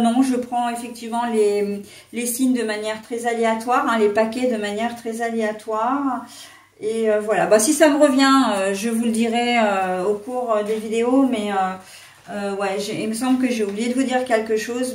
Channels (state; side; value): identical; both; correlation 1.00